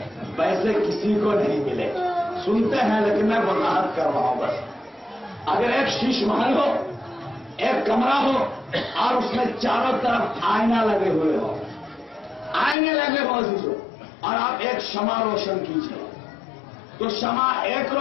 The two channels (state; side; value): drops out; right; at 12.8 s